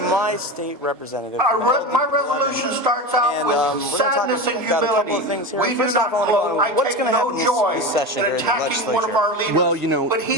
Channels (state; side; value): normal; both; correlation 0.24